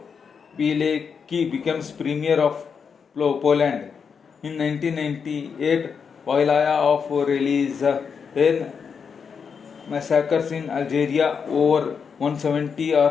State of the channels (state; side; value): quieter; right; 6.2 dB